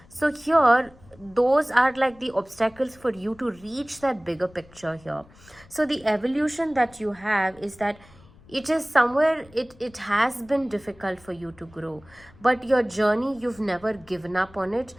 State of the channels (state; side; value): noise; left; rumble, 25 dB below the sound